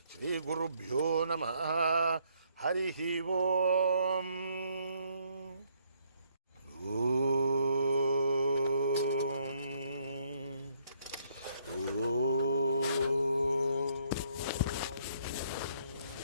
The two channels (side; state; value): both; inverted; correlation -0.69